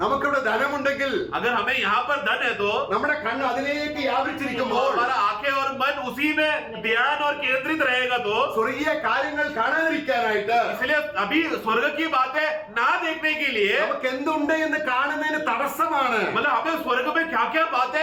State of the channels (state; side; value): identical; both; correlation 1.00